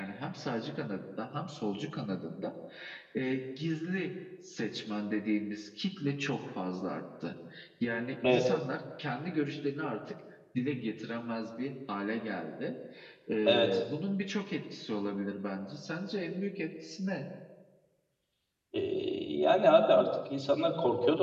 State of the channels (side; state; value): both; identical; correlation 1.00